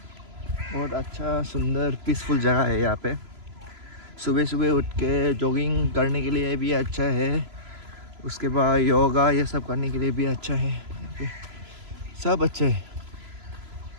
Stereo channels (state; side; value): late; left; 3.0 ms